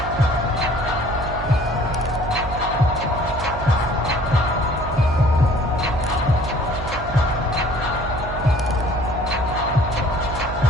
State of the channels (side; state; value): right; noise; hum, 9 dB below the sound